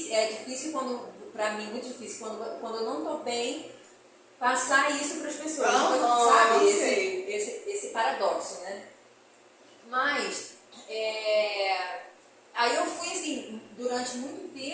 quando pra mim, muito difícil. Quando eu não tô bem, passar isso pras pessoas. Sabe? Esse paradoxo, né? Mas, aí eu fui, assim, durante muito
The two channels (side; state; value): both; identical; correlation 1.00